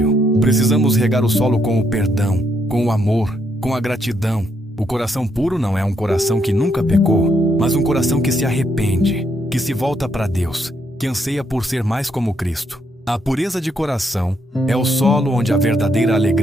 Precisamos regar o solo com o perdão, com o amor, com a gratidão. O coração puro não é um coração que nunca pecou, mas um coração que se arrepende, que se volta para Deus, que anseia por ser mais como Cristo. A pureza de coração é o solo onde a verdadeira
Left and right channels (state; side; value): normal; both; correlation 0.75